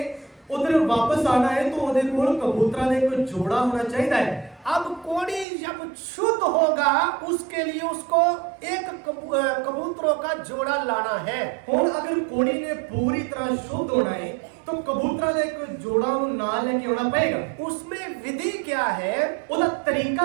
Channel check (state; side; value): drops out; left; at 5.5 s